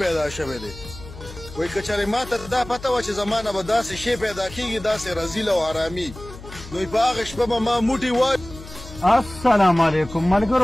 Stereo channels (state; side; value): noise; left; hum, 15 dB below the sound